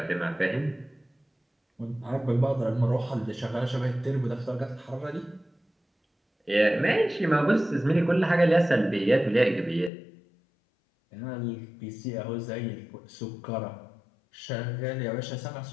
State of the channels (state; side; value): drops out; right; at 9.9 s